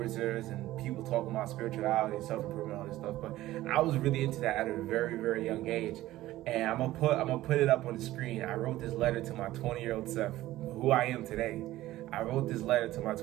and people talking about spirituality, self-improvement, all this stuff. But I was really into that at a very, very young age. And I'm gonna put it up on the screen. I wrote this letter to my 20-year-old self, who I am today. I wrote this letter to my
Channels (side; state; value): left; quieter; 15.8 dB